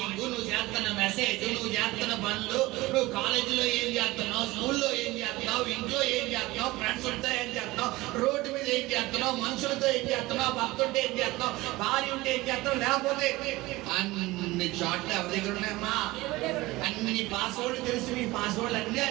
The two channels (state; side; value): quieter; left; 19.9 dB